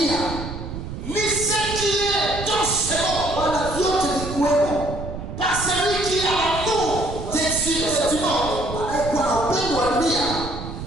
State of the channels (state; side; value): noise; right; rumble, 8 dB below the sound